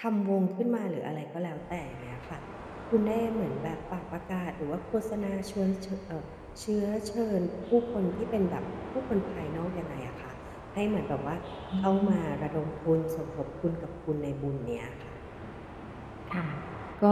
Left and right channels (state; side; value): identical; both; correlation 1.00